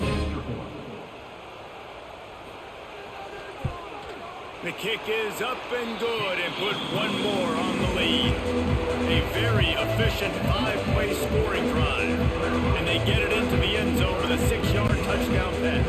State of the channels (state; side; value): identical; both; correlation 1.00